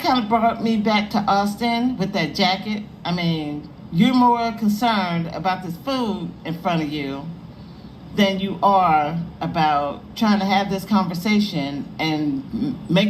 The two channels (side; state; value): both; identical; correlation 1.00